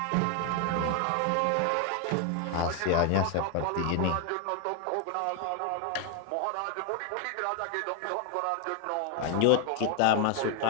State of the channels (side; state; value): both; different; correlation 0.01